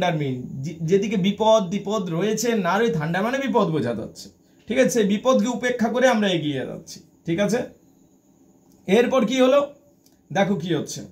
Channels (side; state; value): both; identical; correlation 1.00